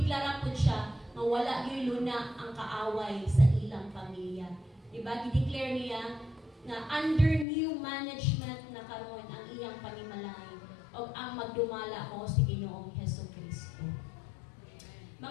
po siya na wala gyud luna ang kaaway sa ilang pamilya. Di ba? Gideclare niya na under new management na karon ang iyang panimalay o ang magdumala ko si Ginoong Hesukristo.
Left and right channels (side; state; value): right; drops out; at 7.5 s